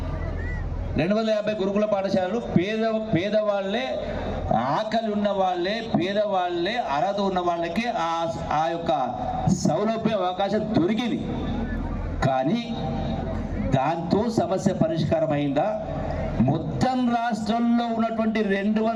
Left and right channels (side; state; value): both; identical; correlation 1.00